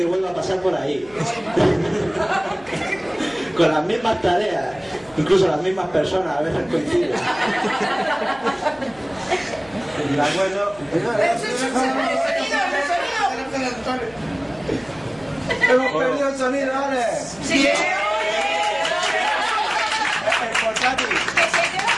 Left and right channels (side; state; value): left; noise; hum, 26 dB below the sound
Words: vuelva a pasar por ahí. Con las mismas tareas. Incluso las mismas personas a veces coinciden. ¿De acuerdo? Hemos perdido el sonido, ¿vale? Sí. El portátil.